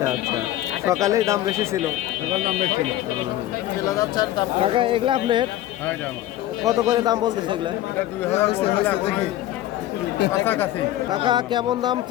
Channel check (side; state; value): right; quieter; 14.0 dB